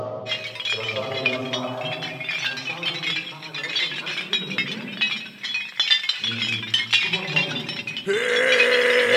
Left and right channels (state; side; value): identical; both; correlation 1.00